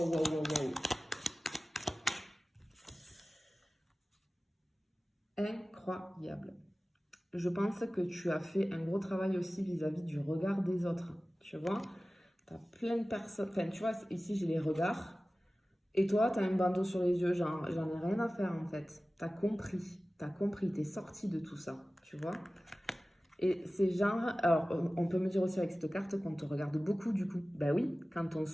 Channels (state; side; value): normal; both; correlation 0.96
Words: waouh, waouh, waouh. Incroyable. Je pense que tu as fait un gros travail aussi vis-à-vis du regard des autres. Tu vois, tu as plein de personnes. Enfin, tu vois, ici j'ai les regards. Et toi, tu as un bandeau sur les yeux. J'en ai rien à faire en fait. Tu as compris. Tu as compris. Tu es sorti de tout ça. Tu vois. Et c'est genre. Alors, on peut me dire aussi avec cette carte qu'on te regarde beaucoup du coup. Ben oui, quand on